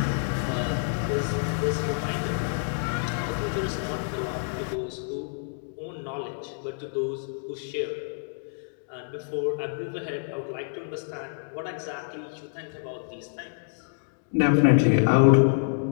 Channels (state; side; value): silent; right; digital silence